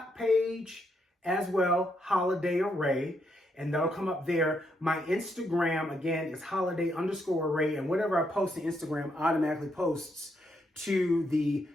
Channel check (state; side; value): normal; both; correlation 0.77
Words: page as well, Holiday Array, and that'll come up there. My Instagram, again, is holiday_array, and whatever I post to Instagram automatically posts to the